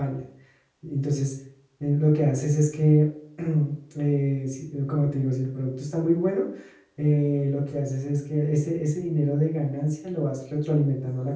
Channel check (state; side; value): identical; both; correlation 1.00